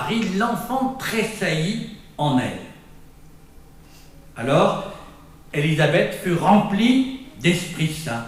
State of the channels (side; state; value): both; identical; correlation 1.00